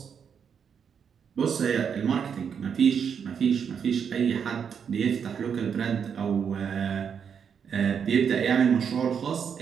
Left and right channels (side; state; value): left; quieter; 7.2 dB